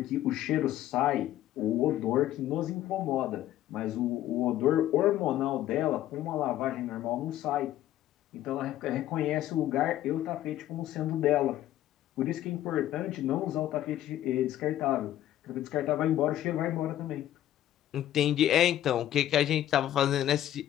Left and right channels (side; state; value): right; quieter; 12.9 dB